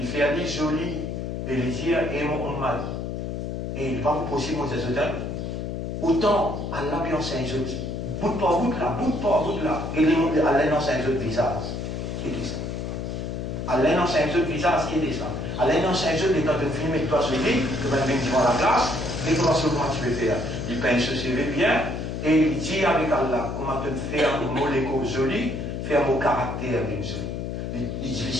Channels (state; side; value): noise; left; hum, 4 dB below the sound